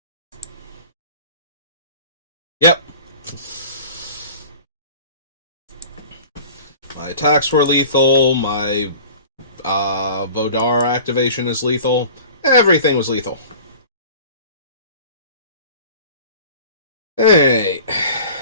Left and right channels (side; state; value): both; inverted; correlation -0.42